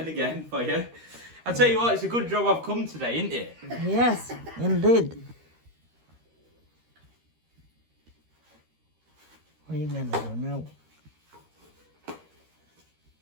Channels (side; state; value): left; late; 13 ms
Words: again for you. I'll tell you what, it's a good job I've come today, isn't it? Yes, indeed. What are you gonna do now?